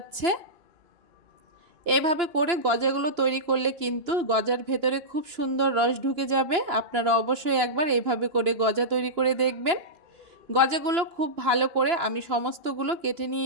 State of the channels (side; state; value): left; late; 2.9 ms